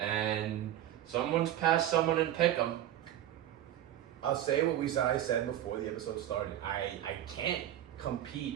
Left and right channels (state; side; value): quieter; left; 12.2 dB